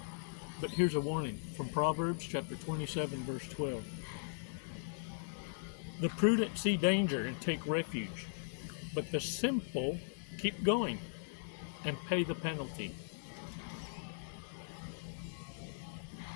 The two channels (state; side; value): silent; right; digital silence